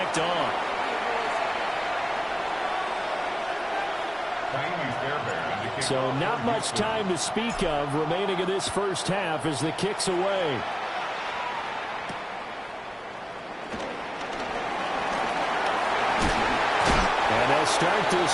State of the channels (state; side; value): identical; both; correlation 1.00